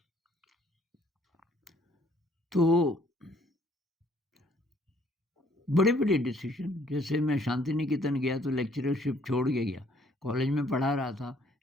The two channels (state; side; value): normal; both; correlation 0.63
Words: तो बड़े-बड़े डिसीज़न, जैसे मैं शांति निकेतन गया तो लेक्चरशिप छोड़ के गया। कॉलेज में पढ़ा रहा था,